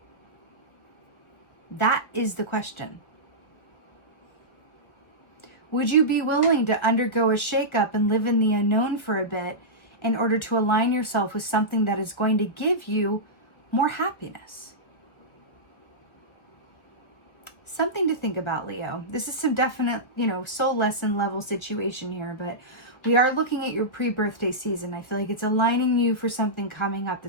That is the question. Would you be willing to undergo a shakeup and live in the unknown for a bit in order to align yourself with something that is going to give you more happiness? Something to think about, Leo. This is some definite, you know, soul lesson level situation here, but we are looking at your pre-birthday season. I feel like it's aligning you for something coming up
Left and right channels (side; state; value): right; late; 1.9 ms